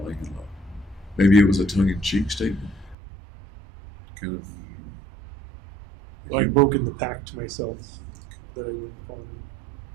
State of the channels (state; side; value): drops out; left; at 3.0 s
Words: in love. Maybe it was a tongue-in-cheek statement. Kind of. I'd broken the pact to myself that I wouldn't fall in love.